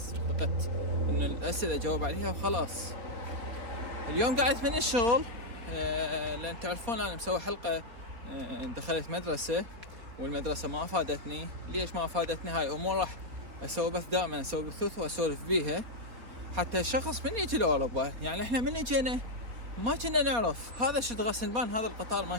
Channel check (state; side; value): late; left; 4.0 ms